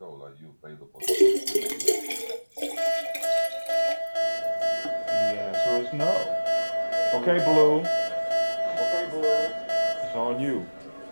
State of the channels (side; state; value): both; inverted; correlation -1.00